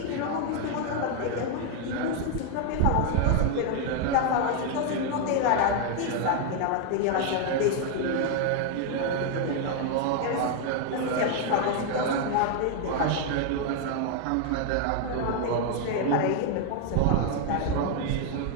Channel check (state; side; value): different; both; correlation 0.00